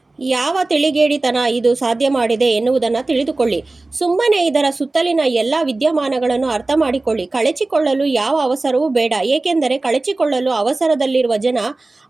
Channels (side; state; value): left; quieter; 3.2 dB